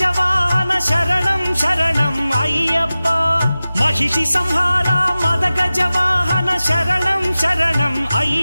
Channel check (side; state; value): both; inverted; correlation -0.96